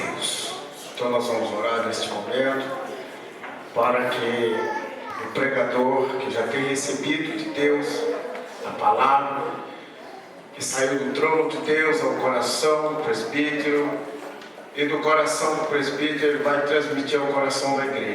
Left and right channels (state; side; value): identical; both; correlation 1.00